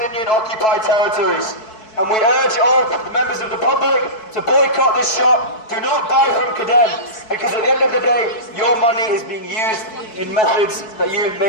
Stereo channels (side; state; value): right; late; 4.6 ms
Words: occupied territories. And we urge all members of the public to boycott this shop. Do not buy from Kedem, because at the end of the day, your money is being used in methods that you